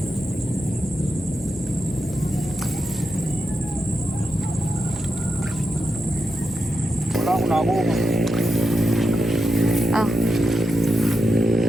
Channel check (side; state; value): both; normal; correlation 0.86